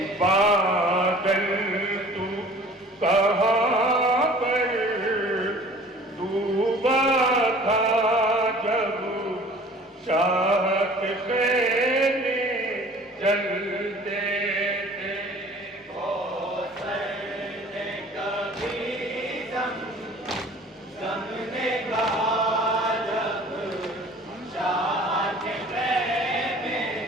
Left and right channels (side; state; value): both; normal; correlation 0.47